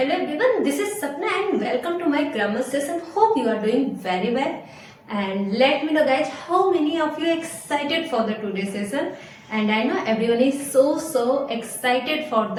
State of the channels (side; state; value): both; identical; correlation 1.00